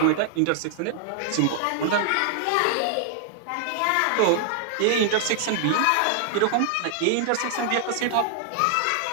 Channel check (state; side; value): different; both; correlation 0.00